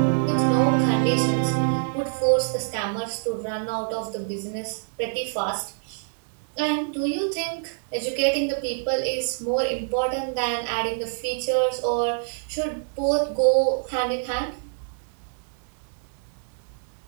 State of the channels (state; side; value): silent; left; digital silence